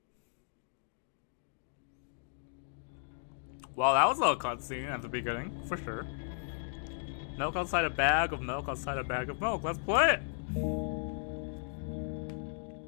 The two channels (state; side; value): silent; right; digital silence